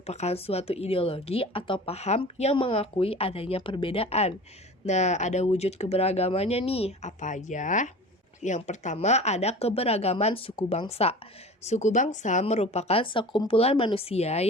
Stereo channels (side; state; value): both; normal; correlation 0.38